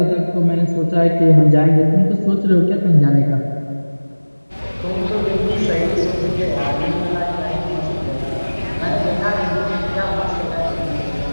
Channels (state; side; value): inverted; both; correlation -1.00